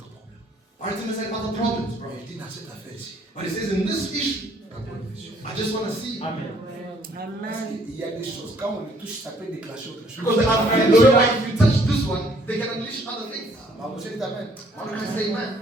problèmes. Bartimaeus had other problems, bro. Il dit dans cette affaire ici, But he says, in this issue, d'abord une vision. I just want to see. Parce qu'il y a des choses, quand on les touche, ça peut déclencher autre chose. Because I'm pretty sure if you touch this one, they can unleash other things. Ma vous dites amen. Why don't I say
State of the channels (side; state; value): both; normal; correlation 0.63